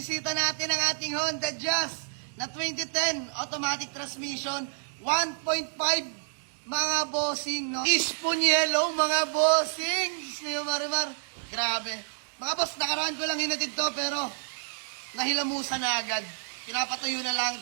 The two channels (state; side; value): silent; left; digital silence